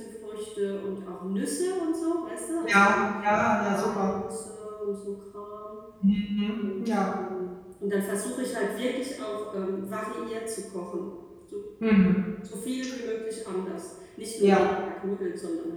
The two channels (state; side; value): identical; both; correlation 1.00